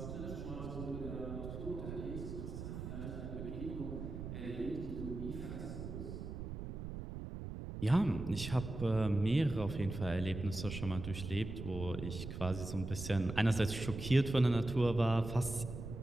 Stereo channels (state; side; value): noise; right; rumble, 7 dB below the sound